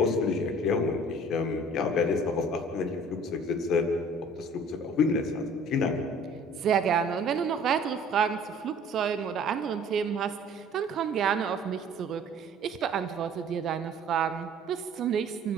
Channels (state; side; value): normal; both; correlation 0.50